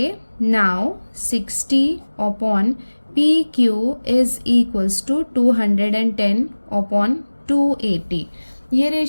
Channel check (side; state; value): both; inverted; correlation -1.00